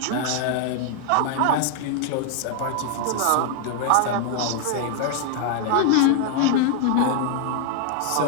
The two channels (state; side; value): different; both; correlation 0.00